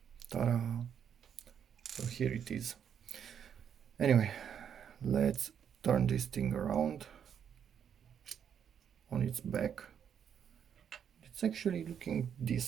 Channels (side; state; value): left; quieter; 8.3 dB